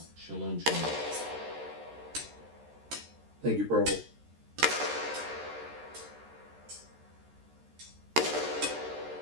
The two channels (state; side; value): late; left; 13 ms